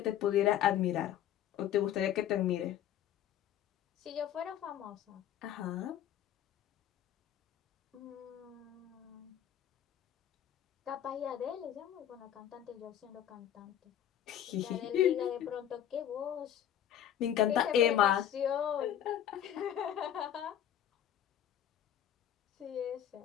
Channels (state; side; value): quieter; right; 10.6 dB